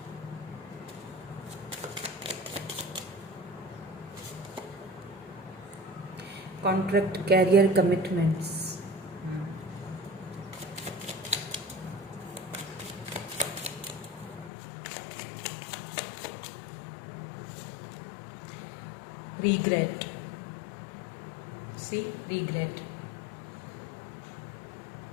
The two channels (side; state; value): right; drops out; at 14.5 s